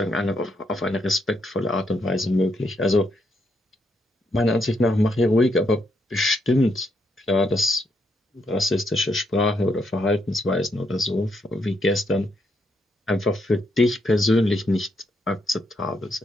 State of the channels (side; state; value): both; normal; correlation 0.78